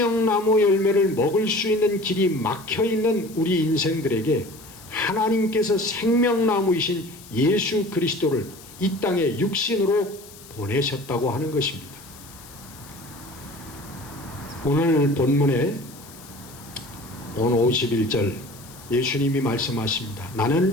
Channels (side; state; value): left; noise; hiss, 20 dB below the sound